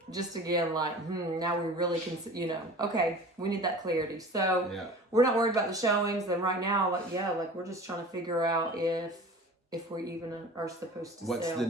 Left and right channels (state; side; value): normal; both; correlation 0.40